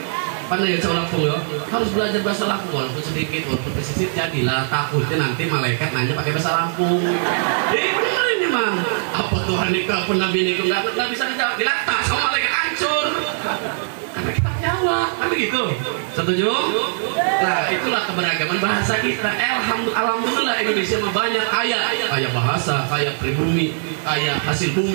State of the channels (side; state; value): left; silent; 65 dB below the other